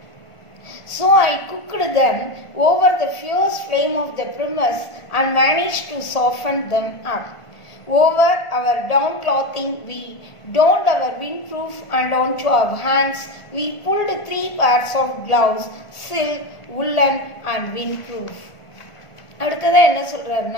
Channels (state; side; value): late; right; 1.5 ms